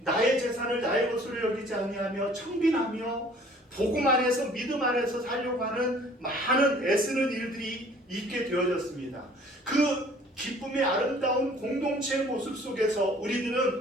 재산을 나의 것으로 여기지 아니하며 청빈하며 복음 안에서 믿음 안에서 살려고 하는 많은 애쓰는 일들이 있게 되어졌습니다. 그 기쁨의 아름다운 공동체의 모습 속에서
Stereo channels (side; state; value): both; normal; correlation 0.53